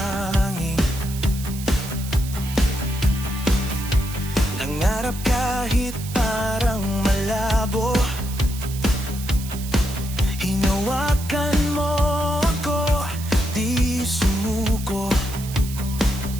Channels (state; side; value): noise; right; hiss, 13 dB below the sound